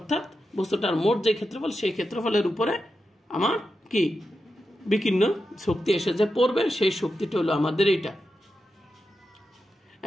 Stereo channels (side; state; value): both; normal; correlation 0.89